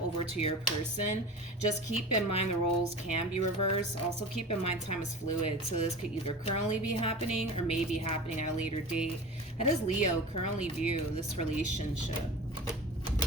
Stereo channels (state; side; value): normal; both; correlation 0.34